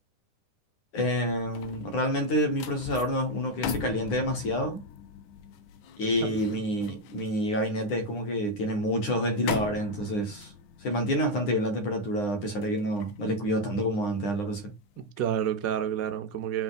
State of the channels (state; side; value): late; right; 9.8 ms